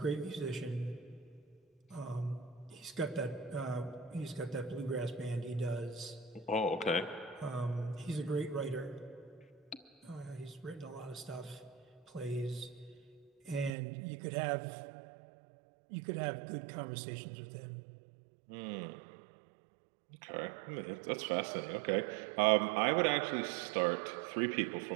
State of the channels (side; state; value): left; drops out; at 13.7 s